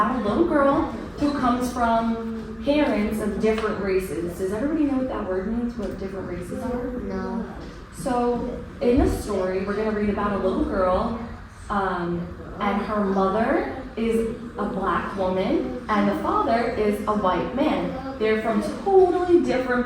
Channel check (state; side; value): identical; both; correlation 1.00